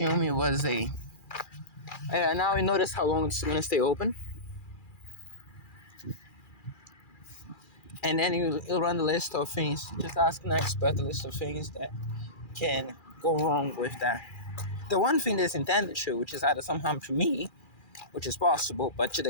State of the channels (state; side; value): late; right; 2.4 ms